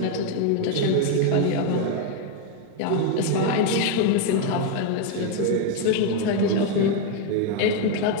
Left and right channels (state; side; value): different; both; correlation 0.01